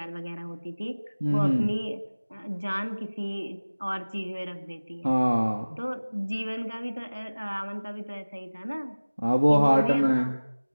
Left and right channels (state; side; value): inverted; both; correlation -1.00